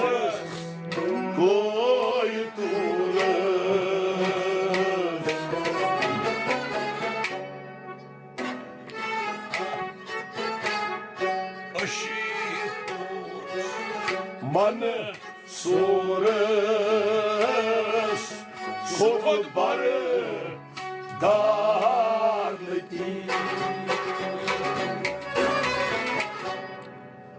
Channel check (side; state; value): both; identical; correlation 1.00